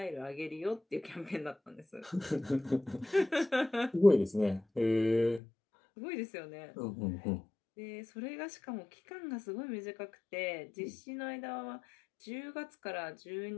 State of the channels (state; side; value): drops out; right; at 5.4 s